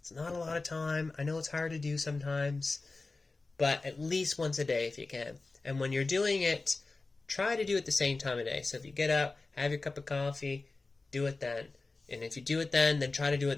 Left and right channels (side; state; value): right; quieter; 3.6 dB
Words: not a lot of time. I know it's hard to do sometimes, but at least once a day if you can. And when you're doing it, try to do it the same time of day. So if you get up, have your cup of coffee, do it then. And if you do it then try to do